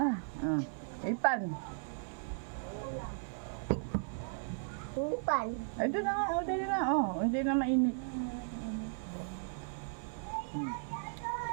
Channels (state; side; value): silent; left; 54 dB below the other